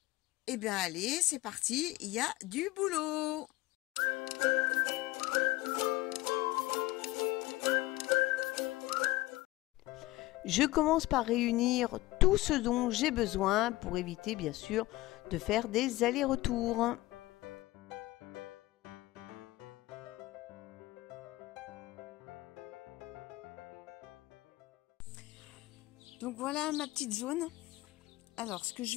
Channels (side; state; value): right; quieter; 18.8 dB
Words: Eh bien, allez, c'est parti, il y a du boulot. Je commence par réunir tout ce dont j'ai besoin pour éviter, bien sûr, de faire des allers-retours. Donc voilà ma petite zone. Alors ce que je